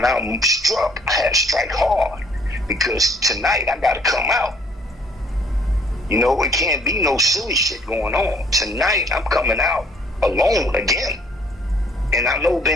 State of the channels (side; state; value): both; normal; correlation 0.60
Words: I struck, I had to strike hard. Because tonight I got to come out. You know, it can't be no silly shit going on. Tonight I'm coming out alone again. And I know